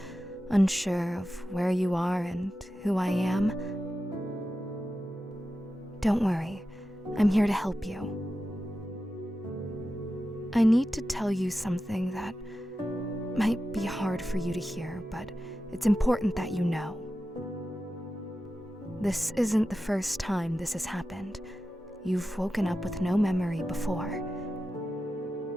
unsure of where you are and who I am. Don't worry, I'm here to help you. I need to tell you something that might be hard for you to hear, but it's important that you know. This isn't the first time this has happened. You've woken up with no memory before.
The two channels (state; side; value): normal; both; correlation 0.92